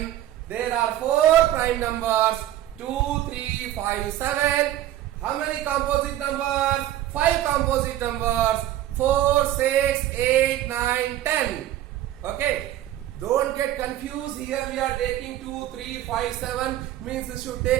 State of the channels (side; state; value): left; quieter; 13.2 dB